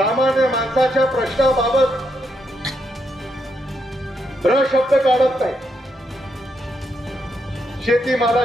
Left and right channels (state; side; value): normal; both; correlation 0.80